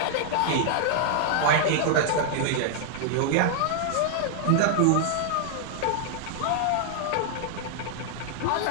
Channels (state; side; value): different; both; correlation 0.00